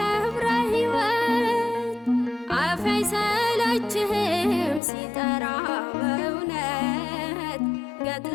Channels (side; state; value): right; drops out; at 4.8 s